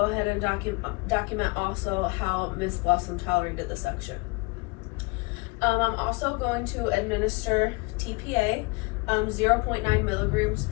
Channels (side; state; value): right; quieter; 27.3 dB